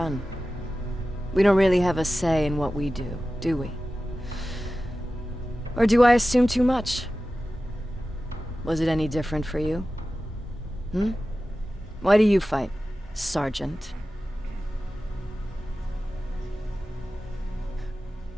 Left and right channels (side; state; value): both; normal; correlation 0.95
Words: We don't really have a say in what we do we? Or do I assume too much? Was it any different for you? Why do you fight, Sergeant?